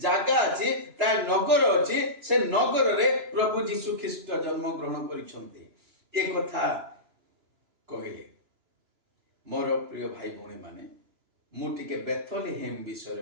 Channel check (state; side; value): late; left; 2.9 ms